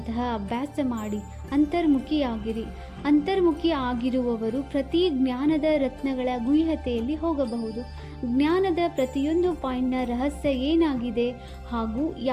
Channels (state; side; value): identical; both; correlation 1.00